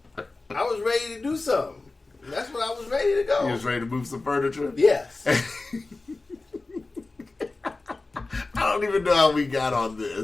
I was ready to do something. That's what I was ready to go. You was ready to move some furniture? Yes. I don't even know how we got on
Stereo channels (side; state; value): right; quieter; 3.4 dB